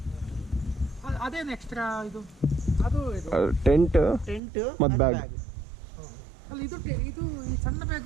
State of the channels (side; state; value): left; drops out; at 4.4 s